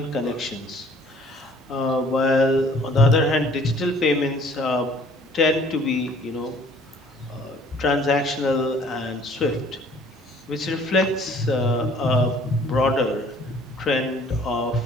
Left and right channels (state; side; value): normal; both; correlation 0.55